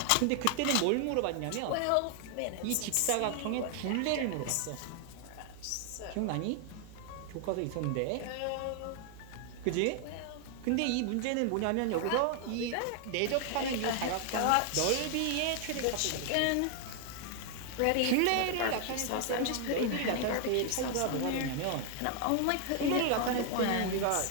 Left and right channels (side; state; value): both; different; correlation 0.00